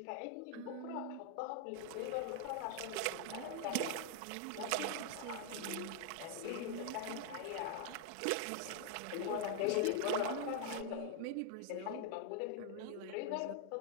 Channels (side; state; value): both; different; correlation 0.00